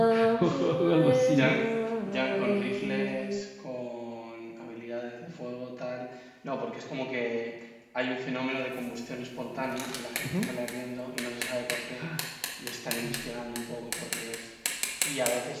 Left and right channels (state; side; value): identical; both; correlation 1.00